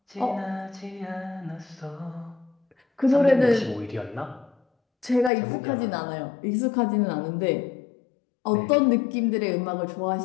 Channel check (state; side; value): drops out; right; at 5.3 s